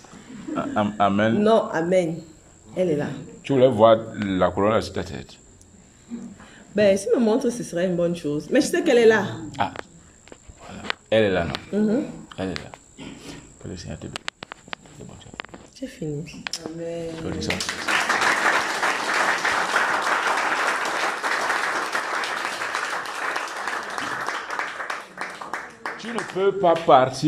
Amen. Non, amen. Elle est là. Tu voulais voir la couronne là sur ta tête. Ben, si me montre, ce serait une bonne chose. Mais je sais qu'elle est là. Ah, voilà. Elle est là, non? Elle est là. Que le Seigneur te bénisse. C'est bon, tu as J'ai fini. Amen. fait ça. Tu ne peux pas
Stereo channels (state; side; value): identical; both; correlation 1.00